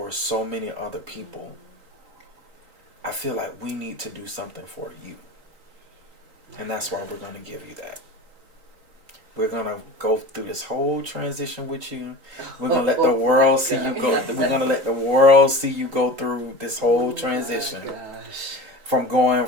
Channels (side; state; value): left; late; 3.8 ms